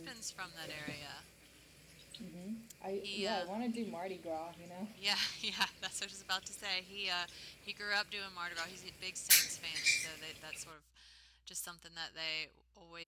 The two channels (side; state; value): both; identical; correlation 1.00